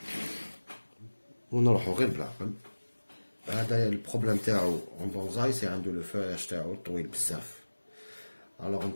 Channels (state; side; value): inverted; both; correlation -1.00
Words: ونروحو غير بالعقل. هذا البروبليم تاعو اون بونزاي سي عنده لو فوياج تاعو طويل بزاف. الوغ